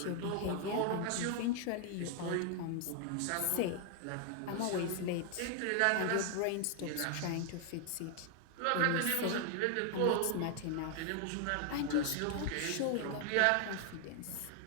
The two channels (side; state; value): both; different; correlation 0.00